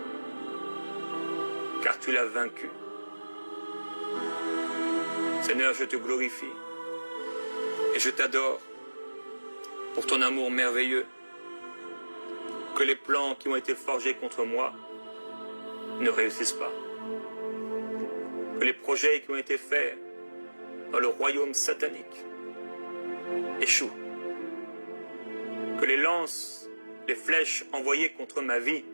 car tu l'as vaincu. Seigneur, je te glorifie et je t'adore pour ton amour merveilleux. Que les plans qui ont été forgés contre moi ne réussissent pas. Que les projets qui ont été faits dans le royaume satanique échouent. les lances, les flèches envoyées contre ma vie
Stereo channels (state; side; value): inverted; both; correlation -1.00